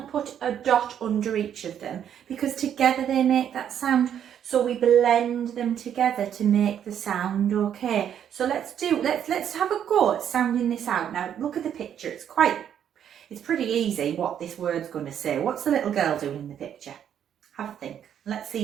put a dot under each of them, because together they make that sound. So we blend them together to make the sound, okay? So let's have a go at sounding this out. Now look at the picture, it's pretty easy what this word's going to say. What's the little girl doing in the picture? Have a think. Let's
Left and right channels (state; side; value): quieter; left; 9.3 dB